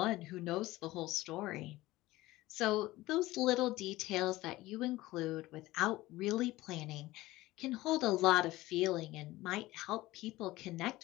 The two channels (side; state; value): right; quieter; 18.1 dB